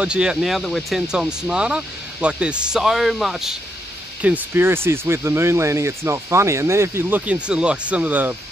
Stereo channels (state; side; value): normal; both; correlation 0.79